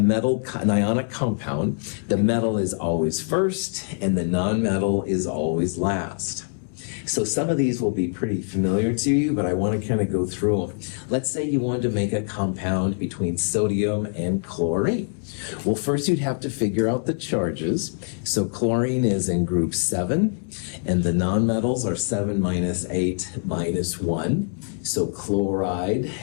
ionic compound, the metal is always first and the nonmetal is always last. So some of these will be pretty familiar to you, but I want to kind of go through them. Let's say you wanted to make a compound between sodium and chlorine. Well, first you'd have to figure out the charges. So chlorine is in group 7, and the nonmetals are 7 minus 8 minus 1. So chloride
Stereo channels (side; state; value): right; silent; 62 dB below the other